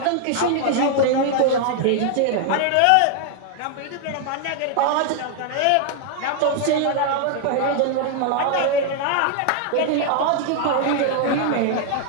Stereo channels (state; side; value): different; both; correlation 0.00